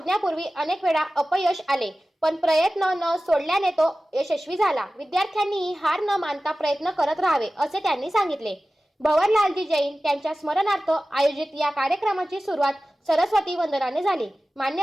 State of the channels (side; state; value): both; normal; correlation 0.96